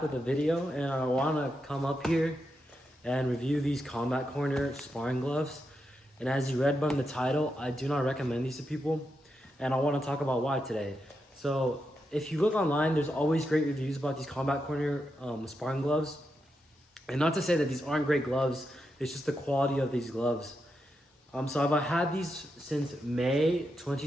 with a video, and I want to come up here and review these Combat Corner sparring gloves. And as you read from the title, I do not recommend these to people, and I want to talk about why today. So if you look online, there's always great reviews about these Combat Corner sparring gloves. And not to say that these aren't great gloves, it's just the quality of these gloves. So I've had these since May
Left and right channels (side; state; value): both; normal; correlation 0.85